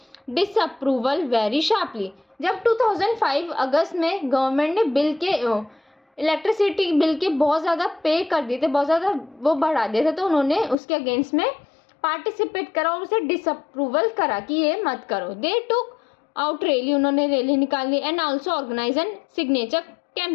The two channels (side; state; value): right; drops out; at 10.8 s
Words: disapproval very sharply. जब 2005 अगस्त में गवर्नमेंट ने इलेक्ट्रिसिटी बिल के बहुत ज़्यादा पे कर दिए थे, बहुत ज़्यादा वो बढ़ा दिए थे, तो उन्होंने उसके अगेंस्ट में पार्टिसिपेट करा और उसे डिसअप्रूवल करा कि ये मत करो। दे टुक आउट रैली, उन्होंने रैली निकाली, and also organise an signature